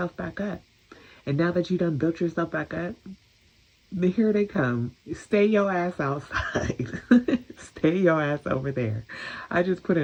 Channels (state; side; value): identical; both; correlation 1.00